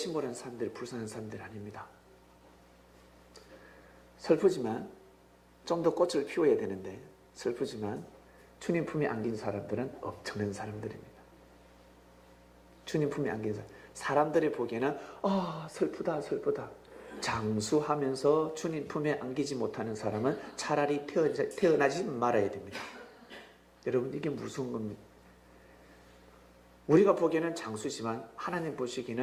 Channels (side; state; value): both; identical; correlation 1.00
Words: 사람들, 불쌍한 사람들 아닙니다. 슬프지만 좀 더 꽃을 피워야 되는데, 슬프지만 주님 품에 안긴 사람들은 엄청난 사람들입니다. 주님 품에 안긴 사람들이 보기에는 슬프다 슬프다. 장수하면서 주님 품에 안기지 못하는 사람은 차라리 태어나지 말아야 됩니다. 여러분, 이게 무서운 겁니다. 우리가 보기에는 장수지만 하나님